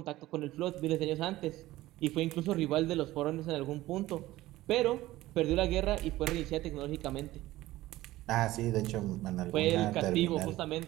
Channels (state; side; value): quieter; left; 16.7 dB